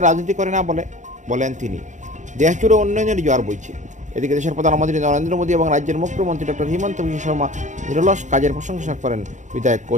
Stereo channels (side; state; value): left; late; 0.35 ms